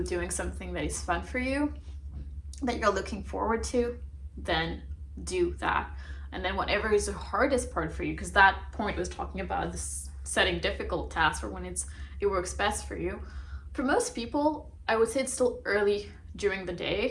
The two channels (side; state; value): both; identical; correlation 1.00